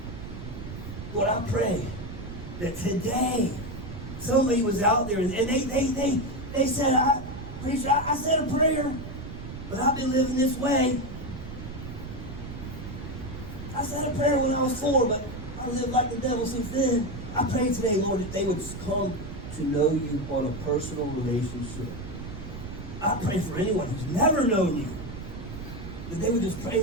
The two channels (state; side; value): noise; right; rumble, 10 dB below the sound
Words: Lord, I pray that today somebody was out there and they said, preacher, I said a prayer, but I've been living this way. I said a prayer when I was 4, but I lived like the devil since then. I pray today, Lord, that they would come to know you on a personal relationship. I pray for anyone who's never known you, that they would just pray,